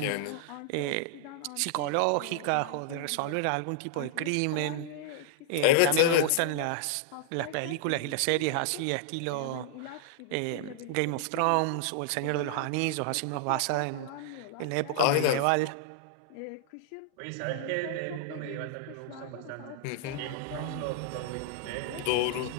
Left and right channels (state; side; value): different; both; correlation -0.01